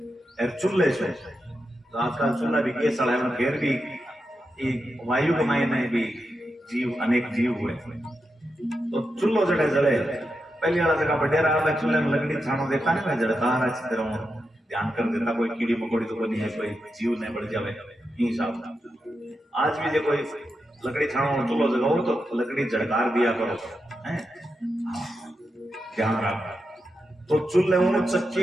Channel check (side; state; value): both; normal; correlation 0.87